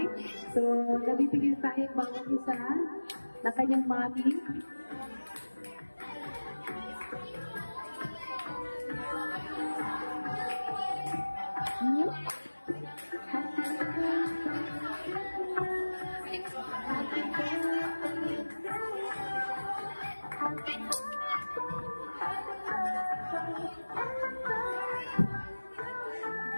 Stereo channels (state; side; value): inverted; both; correlation -1.00